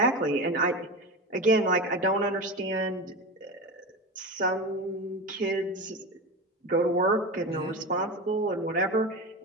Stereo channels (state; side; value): normal; both; correlation 0.23